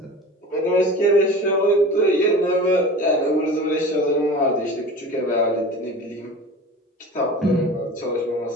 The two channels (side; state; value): both; normal; correlation 0.36